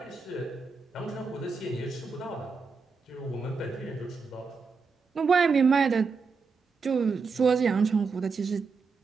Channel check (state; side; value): quieter; left; 4.9 dB